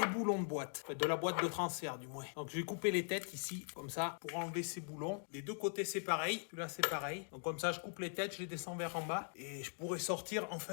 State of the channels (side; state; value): right; silent; 50 dB below the other